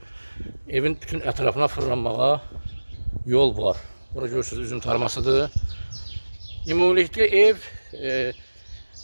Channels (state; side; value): inverted; both; correlation -1.00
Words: Evin bütün ətrafına fırlanmağa yol var. Bura görürsünüz, üzüm tarmasıdır. Ümumilikdə ev